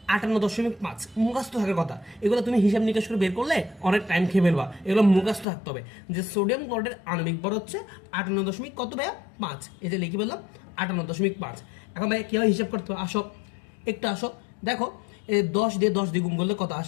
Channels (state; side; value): drops out; right; at 5.5 s